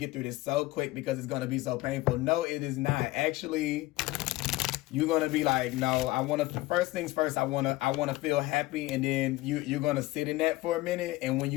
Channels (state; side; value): quieter; right; 19.2 dB